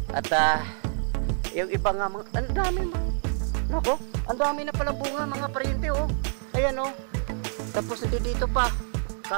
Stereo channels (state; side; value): silent; left; 58 dB below the other